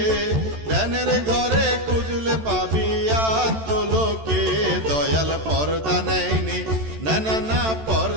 ধ্যানের ঘরে খুঁজলে পাবি আত্মলোকে দয়াল পর্দা নেয়নি না না না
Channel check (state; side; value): late; left; 13 ms